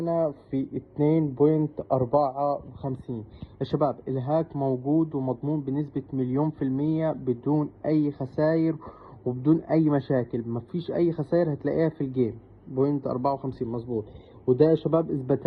في 2.54 يا شباب. الهاك موجود ومضمون بنسبة 100% بدون أي خسائر وبدون أي مشاكل. مفيش أي خسائر هتلاقيها في الجيم. 0.54 مظبوط. وده يا شباب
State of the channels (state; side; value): identical; both; correlation 1.00